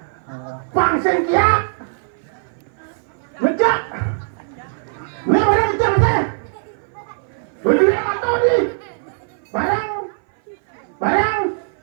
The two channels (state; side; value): silent; left; 58 dB below the other